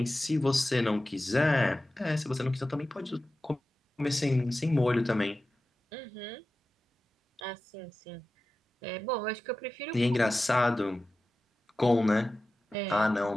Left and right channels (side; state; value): both; normal; correlation 0.94